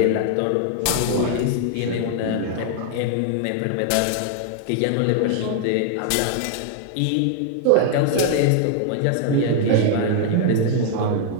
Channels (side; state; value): both; different; correlation 0.00